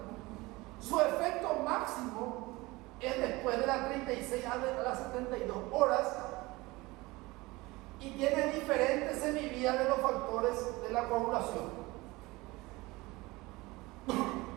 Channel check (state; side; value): quieter; left; 21.8 dB